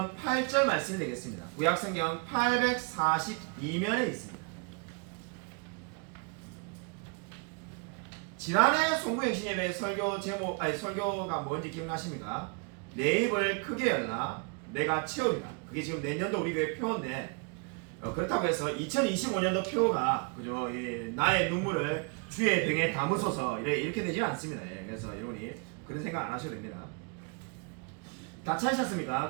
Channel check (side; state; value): left; quieter; 35.1 dB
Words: 8절 말씀이 되겠습니다. 구약성경 842면에 있습니다. 지난해 송구행신예배 설교 제목, 설교가 뭔지 기억나십니까? 내 입을 크게 열라 내가 채우리라. 그게 지금 내년도 우리 교회 표어인데, 그렇다고 해서 2025년도 표어가 그죠? 나의 눈물을 주의 병에 담으소서 이렇게 되지는 않습니다. 그래서 여러분이 그런 생각 안 하셔도 됩니다. 다